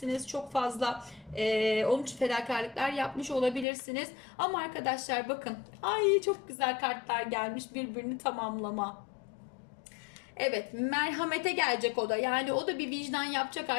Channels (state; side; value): drops out; right; at 3.7 s